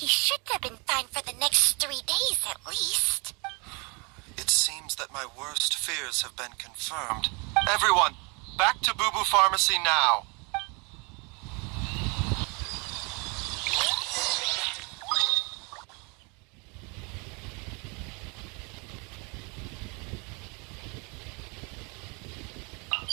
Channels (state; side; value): quieter; left; 30.7 dB